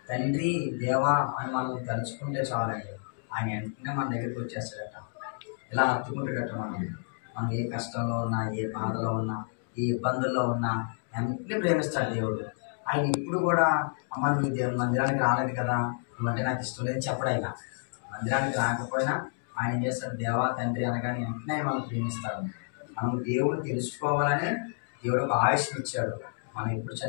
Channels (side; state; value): right; silent; 58 dB below the other